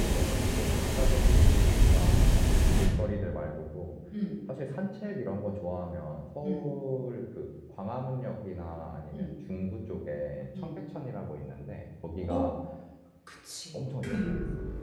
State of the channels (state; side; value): identical; both; correlation 1.00